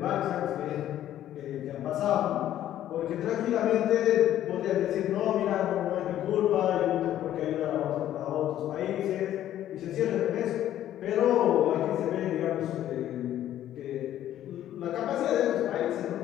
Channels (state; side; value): quieter; right; 12.1 dB